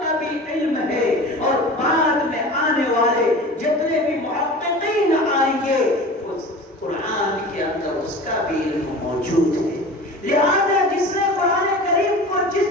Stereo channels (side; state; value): both; normal; correlation 0.36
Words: کا بھی علم ہے اور بعد میں آنے والے جتنے بھی محققین آئیں گے قرآن کے اندر اس کا بھی علم موجود ہے۔ لہذا جس نے قرآن کریم کو جس